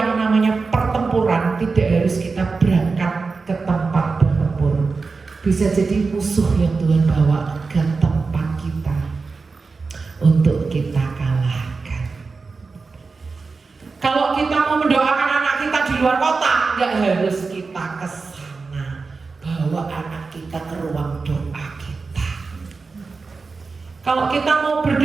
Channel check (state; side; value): quieter; left; 4.4 dB